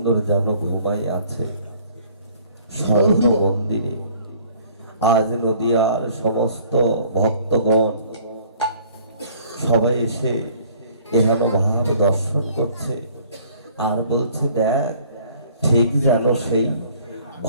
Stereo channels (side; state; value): both; inverted; correlation -0.56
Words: যেন ঘুমাই আছে স্বর্ণ মন্দিরে। আজ নদিয়ার সমস্ত ভক্তগণ সবাই এসে এহেন ভাব দর্শন করছে আর বলছে দেখ ঠিক যেন সেই